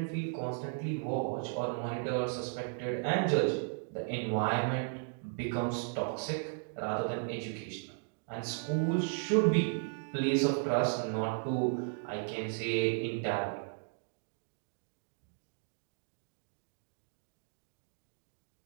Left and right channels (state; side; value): silent; left; 54 dB below the other